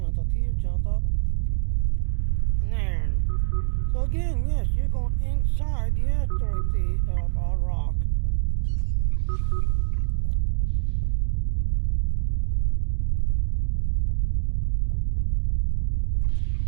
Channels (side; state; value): left; silent; digital silence